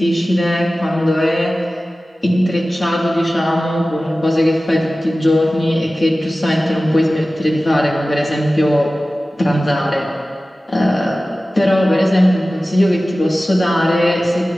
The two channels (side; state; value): both; normal; correlation 0.96